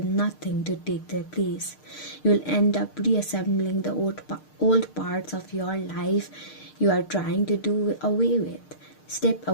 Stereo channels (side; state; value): right; late; 6.6 ms